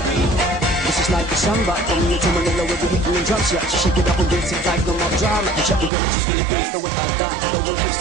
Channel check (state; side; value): drops out; left; at 5.9 s